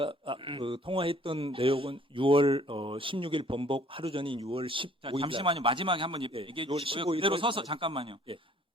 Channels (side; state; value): both; normal; correlation 0.57